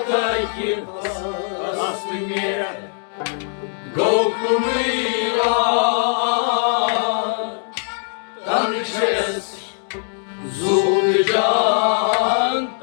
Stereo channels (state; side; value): silent; right; 59 dB below the other